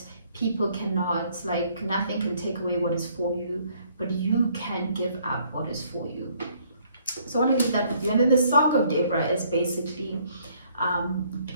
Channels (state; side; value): inverted; both; correlation -0.64